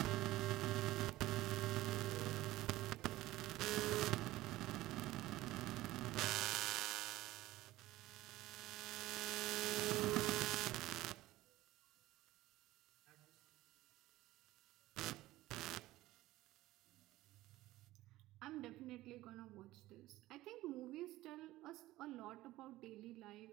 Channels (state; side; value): quieter; left; 16.8 dB